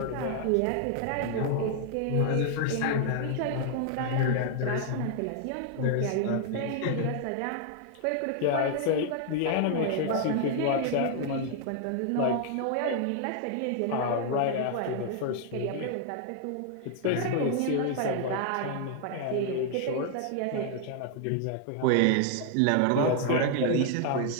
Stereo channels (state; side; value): different; both; correlation 0.00